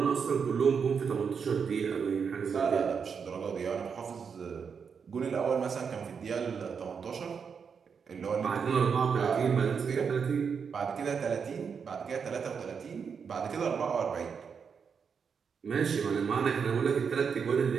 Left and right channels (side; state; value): left; quieter; 6.3 dB